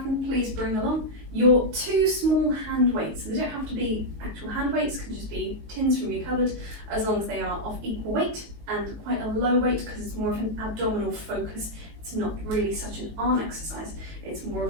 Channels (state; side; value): late; left; 18 ms